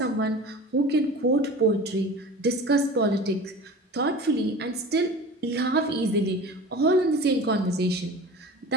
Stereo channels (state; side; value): normal; both; correlation 0.37